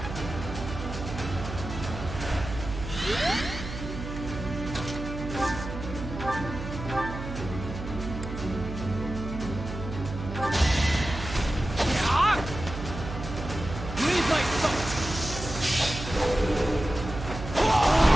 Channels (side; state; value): right; noise; hum, 8 dB below the sound